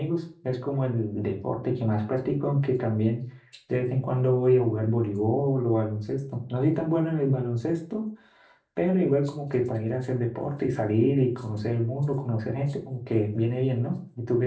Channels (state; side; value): identical; both; correlation 1.00